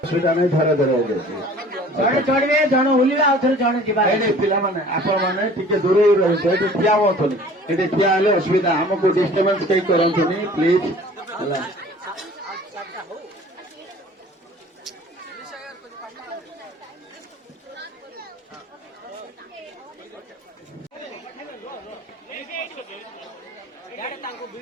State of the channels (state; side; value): normal; both; correlation 0.48